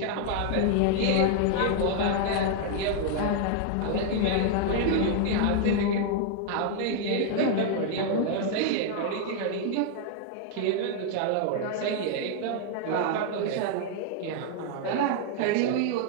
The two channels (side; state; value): both; different; correlation 0.00